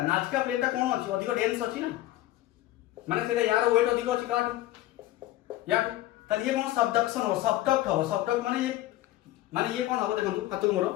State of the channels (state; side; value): quieter; right; 15.5 dB